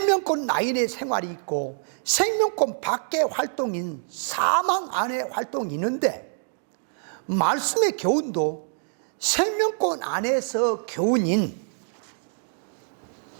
라인의 생활이 있고 생명권 밖의 활동인 사망 안의 활동이 있는데 말씀의 교훈도 생명권 안에서 교훈인지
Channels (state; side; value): silent; left; digital silence